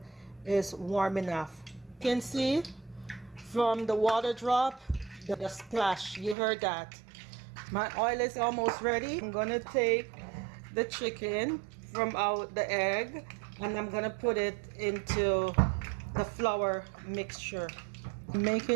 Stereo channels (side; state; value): left; drops out; at 6.4 s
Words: is warm enough. You can see from the water drop, the splash, you heard that. My oil is almost ready. I'm gonna take the chicken from out the egg and I'm gonna put it into the flour mixture.